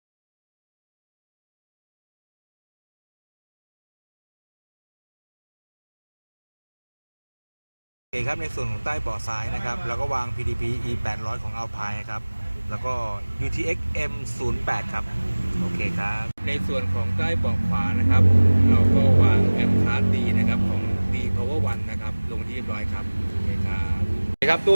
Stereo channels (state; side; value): inverted; both; correlation -1.00